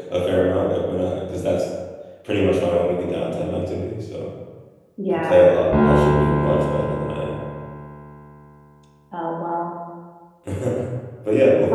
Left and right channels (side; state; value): both; identical; correlation 1.00